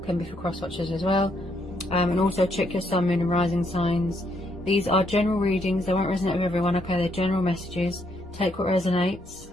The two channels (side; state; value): both; normal; correlation 0.73